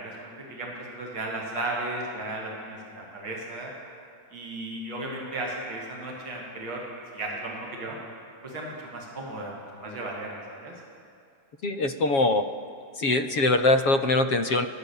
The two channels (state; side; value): late; right; 7.3 ms